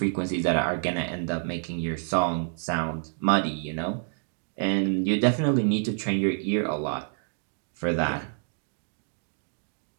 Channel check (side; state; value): left; silent; digital silence